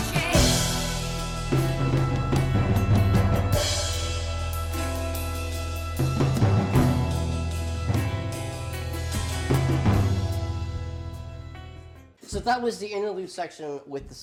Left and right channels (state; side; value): identical; both; correlation 1.00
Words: So that was the interlude section with the